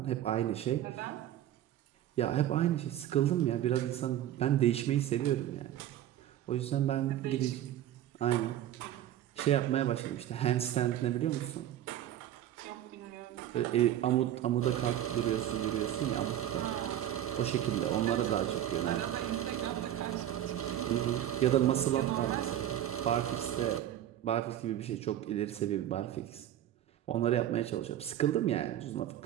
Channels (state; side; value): quieter; left; 11.9 dB